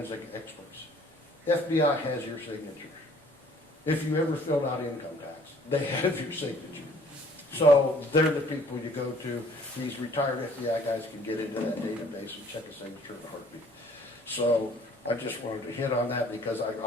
experts. FBI has your signature. If you ever filled out income tax, they have your signature. So they're the people you go to. These retired FBI guys can get into that database and check a signature in a heartbeat. So I just wanted to hit on that because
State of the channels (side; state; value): both; normal; correlation 0.56